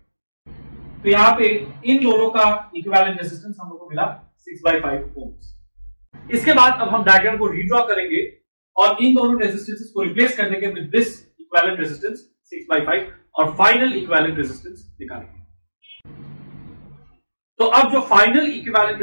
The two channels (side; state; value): both; inverted; correlation -1.00